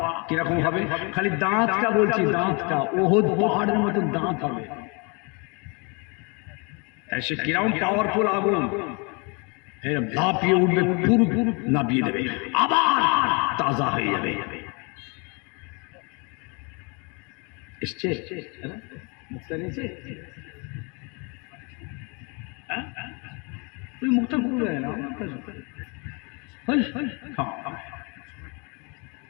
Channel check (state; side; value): quieter; right; 31.9 dB